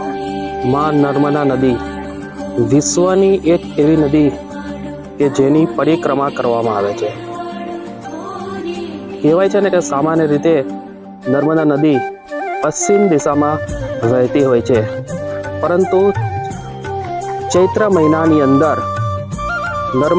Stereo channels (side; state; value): both; identical; correlation 1.00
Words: માં નર્મદા નદી વિશ્વની એક એવી નદી કે જેની પરિક્રમા કરવામાં આવે છે. કહેવાય છે ને કે સામાન્ય રીતે નર્મદા નદી પશ્ચિમ દિશામાં વહેતી હોય છે, પરંતુ ચૈત્ર મહિનાની અંદર